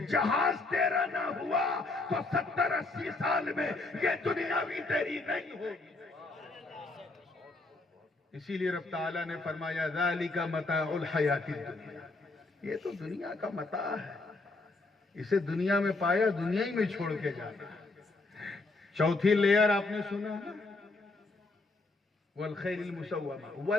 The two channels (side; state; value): right; quieter; 3.3 dB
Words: جہاز تیرا نہ ہوا تو 70-80 سال میں یہ دنیا بھی تیری نہیں ہوگی. اسی لیے رب تعالیٰ نے فرمایا ذالک متاع الحیات الدنیا، یہ تو دنیا کا متاع ہے، اسے دنیا میں پایا دنیا ہی میں چھوڑ کے جانا. چوتھی لیئر آپ نے سنا والخیل المسومہ